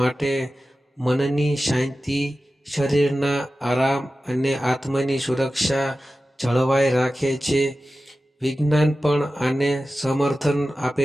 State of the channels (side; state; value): both; normal; correlation 0.94